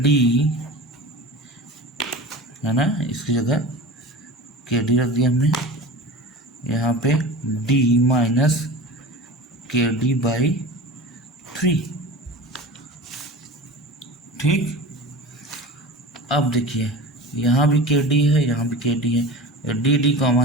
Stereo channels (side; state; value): both; normal; correlation 0.33